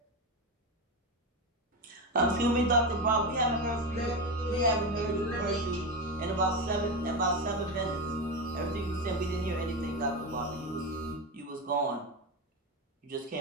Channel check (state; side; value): normal; both; correlation 0.16